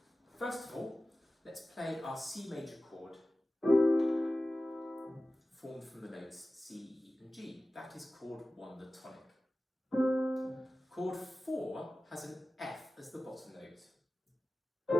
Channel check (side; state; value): both; normal; correlation 0.95